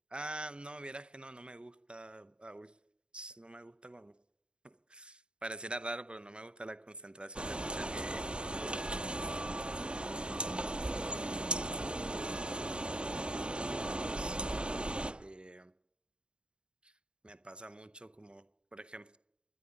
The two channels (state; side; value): late; left; 0.052 ms